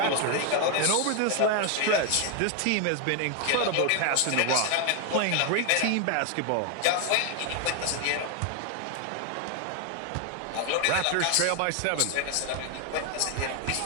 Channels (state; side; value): different; both; correlation 0.01